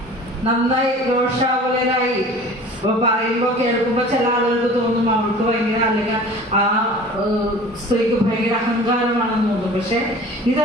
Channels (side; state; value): both; normal; correlation 0.43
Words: നന്നായി രോഷാകുലരായി പറയുമ്പോ കേൾക്കുമ്പോ ചില ആളുകൾക്ക് തോന്നും അവൾക്ക് ഭയങ്കര, അല്ലെങ്കിൽ ആ സ്ത്രീക്ക് ഭയങ്കര അഹങ്കാരമാണെന്ന് തോന്നും. പക്ഷെ